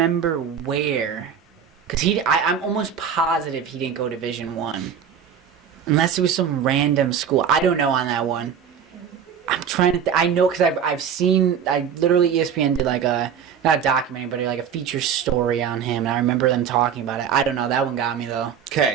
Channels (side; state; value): left; quieter; 7.7 dB